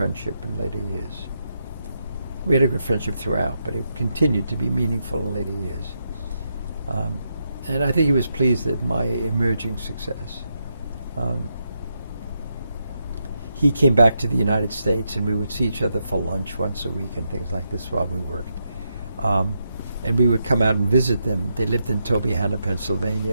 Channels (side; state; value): both; inverted; correlation -0.82